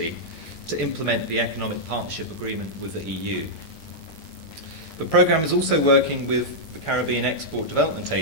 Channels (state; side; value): late; right; 20 ms